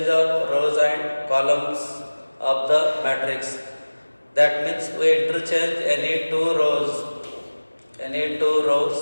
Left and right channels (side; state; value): both; inverted; correlation -1.00